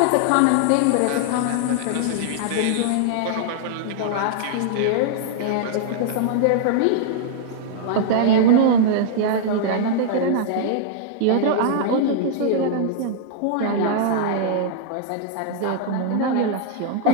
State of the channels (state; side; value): different; both; correlation -0.01